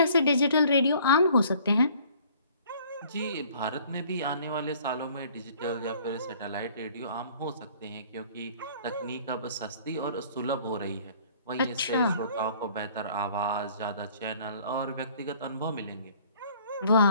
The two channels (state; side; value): inverted; both; correlation -0.55